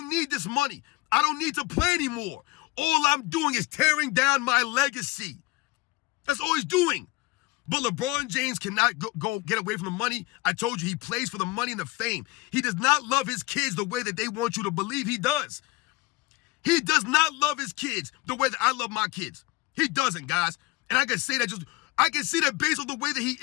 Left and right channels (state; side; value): quieter; right; 21.1 dB